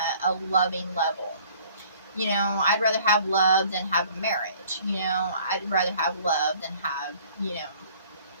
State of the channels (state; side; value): inverted; both; correlation -0.55